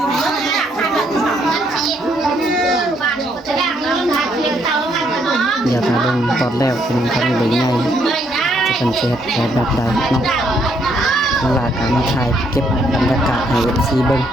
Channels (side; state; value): both; normal; correlation 0.71